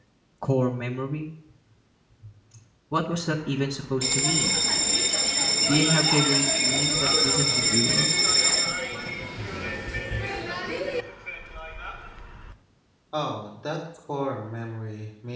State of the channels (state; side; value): identical; both; correlation 1.00